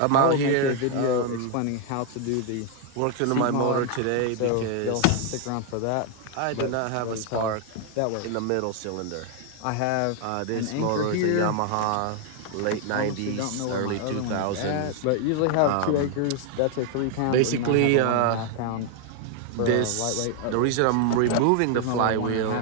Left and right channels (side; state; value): both; different; correlation 0.00